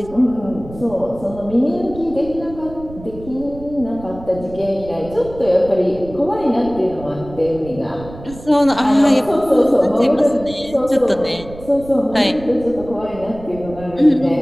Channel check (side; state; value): right; noise; rumble, 16 dB below the sound